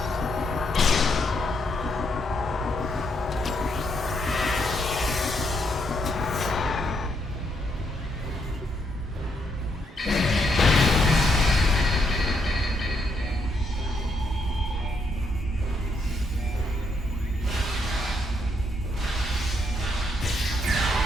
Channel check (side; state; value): both; normal; correlation 0.76